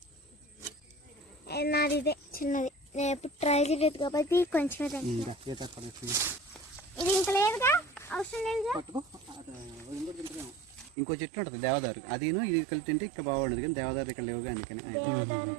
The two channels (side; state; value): left; drops out; at 11.0 s